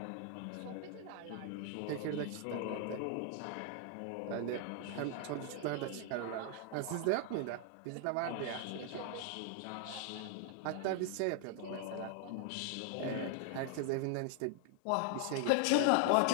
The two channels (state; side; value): different; both; correlation 0.00